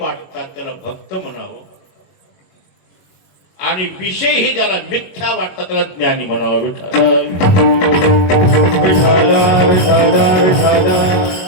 त्याला भक्त म्हणावं, आणि विषय हे ज्याला मिथ्या वाटतात त्याला ज्ञानी म्हणावं.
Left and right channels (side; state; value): right; late; 22 ms